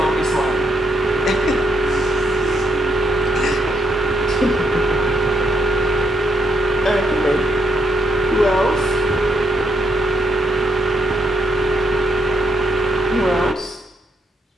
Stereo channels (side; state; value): both; normal; correlation 0.76